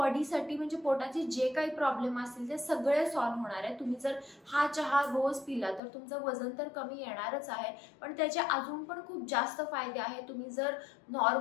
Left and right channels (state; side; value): drops out; right; at 5.8 s